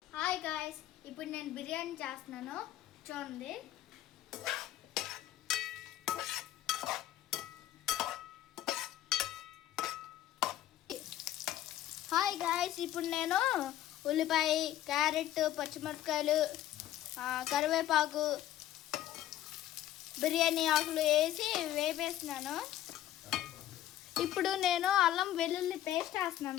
Hi guys, ఇప్పుడు నేను బిర్యానీ చేస్తున్నాను చూడండి. హాయ్ గాయ్స్, ఇప్పుడు నేను ఉల్లిపాయ, క్యారెట్, పచ్చిమిరపకాయలు, కరివేపాకు, బిర్యానీ ఆకులు వేసి వేపేస్తున్నాను. ఇప్పుడు నేను అల్లం వెల్లుల్లి పేస్ట్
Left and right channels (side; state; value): right; quieter; 13.0 dB